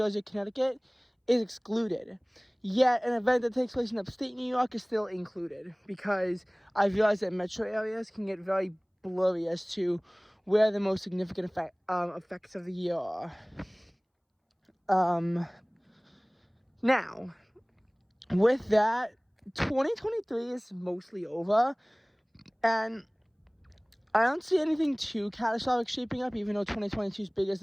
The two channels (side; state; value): both; identical; correlation 1.00